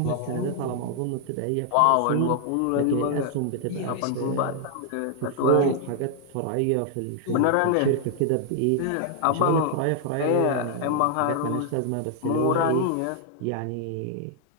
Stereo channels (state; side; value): different; both; correlation 0.00